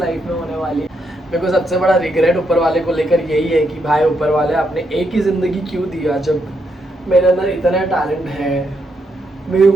में होने वाली है। मेरे को सबसे बड़ा रिग्रेट ऊपर वाले को लेकर यही है कि भाई ऊपर वाले आपने एक ही ज़िंदगी क्यों दिया, जब मेरे अंदर इतना टैलेंट है, मेरे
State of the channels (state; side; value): normal; both; correlation 0.79